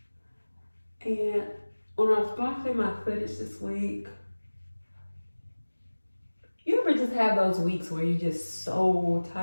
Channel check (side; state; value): both; inverted; correlation -1.00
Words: And when I was going through my footage this week, you ever just have those weeks where you're just so